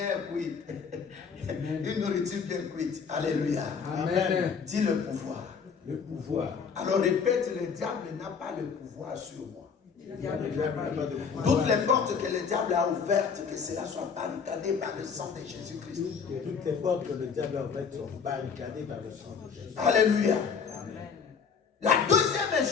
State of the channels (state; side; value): quieter; right; 6.1 dB